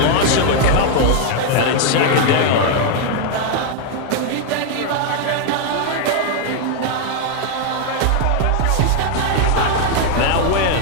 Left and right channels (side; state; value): both; different; correlation 0.00